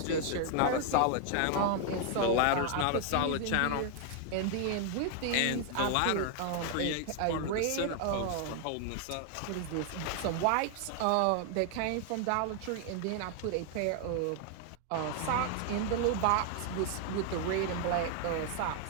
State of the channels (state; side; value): different; both; correlation 0.00